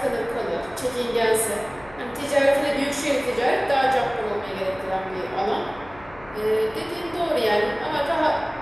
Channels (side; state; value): left; noise; hum, 21 dB below the sound